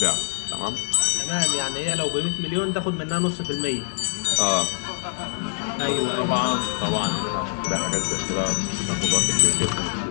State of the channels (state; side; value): silent; right; digital silence